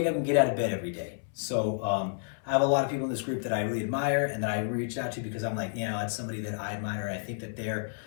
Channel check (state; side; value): silent; right; 58 dB below the other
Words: up and get out of bed every day. So I have a lot of people in this group that I really admire and that I reach out to because I'm like, you know, it's somebody that I admire. I think that they're